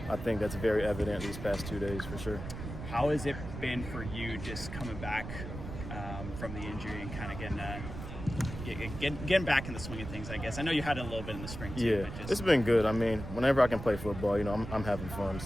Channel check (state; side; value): noise; right; rumble, 9 dB below the sound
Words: I think that's very evident these past 2 days for sure. How has it been for you just coming back from the injury and kind of getting back in the swing of things, I guess? I know you had it a little bit in the spring too. Yeah, but it's been good. I mean, whenever I can play football, you know, I'm having fun,